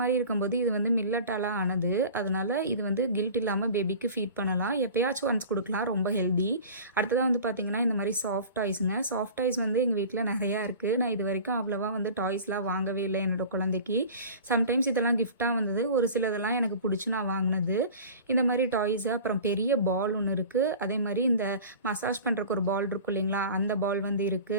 இருக்கும்போது இது வந்து மில்லட்டால் ஆனது. அதனால இது வந்து கில்ட் இல்லாமல் பேபிக்கு ஃபீட் பண்ணலாம். எப்பயாச்சும் ஒன்ஸ் கொடுக்கலாம். ரொம்ப ஹெல்தி. அடுத்ததாக வந்து பார்த்தீங்கன்னா இந்த மாதிரி சாஃப்ட் டாய்ஸுங்க. சாஃப்ட் டாய்ஸ் வந்து எங்கள் வீட்டில் நிறையா இருக்குது. நான் இது வரைக்கும் அவ்வளோவா வந்து டாய்ஸ்லாம் வாங்கவே இல்லை என்னோட குழந்தைக்கு. சம்டைம்ஸ் இதெல்லாம் கிஃப்டாக வந்தது. ஒரு சிலதெல்லாம் எனக்கு பிடிச்சி நான் வாங்கினது. இந்த மாதிரி டாய்ஸு. அப்புறம் பெரிய பால் ஒன்று இருக்குது. அதே மாதிரி இந்த மசாஜ் பண்ணுறக்கு ஒரு பால் இருக்கும் இல்லைங்களா, அந்த பால் வந்து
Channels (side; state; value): both; inverted; correlation -0.39